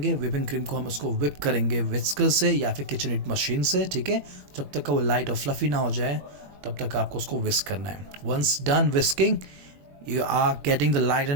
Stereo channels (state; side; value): late; left; 21 ms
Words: whipping cream को हम उसको whip करेंगे whisker से या फिर KitchenAid मशीन से, ठीक है. जब तक का वो लाइट और फ्लफी ना हो जाए तब तक आपको उसको whisk करना है. Once done whisking, you are getting the light